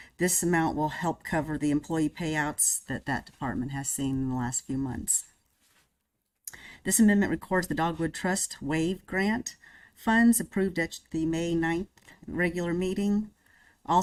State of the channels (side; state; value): both; identical; correlation 1.00